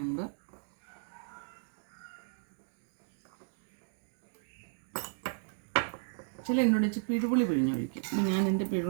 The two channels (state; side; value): silent; left; digital silence